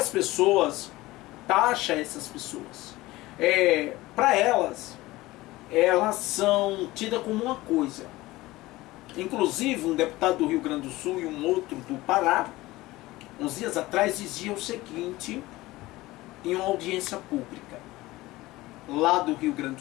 pessoas taxam essas pessoas. Para elas são tidas como uma coisa. Inclusive um deputado do Rio Grande do Sul e um outro do Pará, uns dias atrás, dizia o seguinte em uma audiência pública lá do Rio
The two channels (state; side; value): quieter; right; 18.8 dB